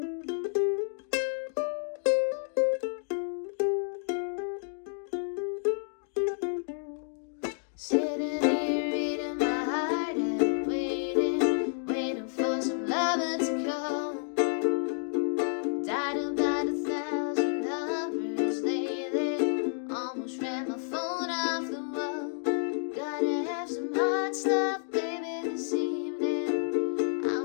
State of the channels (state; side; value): silent; right; digital silence